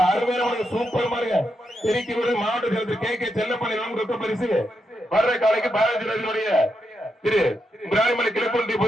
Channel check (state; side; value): normal; both; correlation 0.83